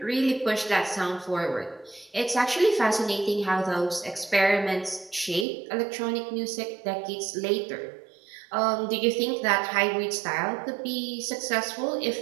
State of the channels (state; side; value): drops out; left; at 5.5 s